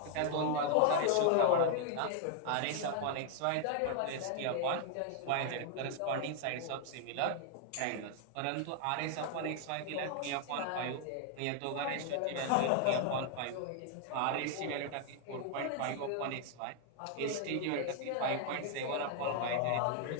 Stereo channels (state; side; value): different; both; correlation 0.00